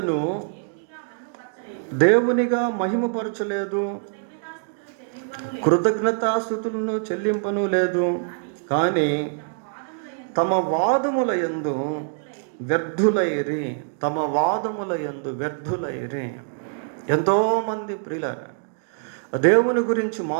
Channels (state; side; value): silent; left; digital silence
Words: దేవునిగా మహిమపరచలేదు, కృతజ్ఞతాస్తుతులను చెల్లింపను లేదు, కానీ తమ వాదముల యందు వ్యర్థులైరి. ఎంతోమంది ప్రియులారా దేవుని గురించి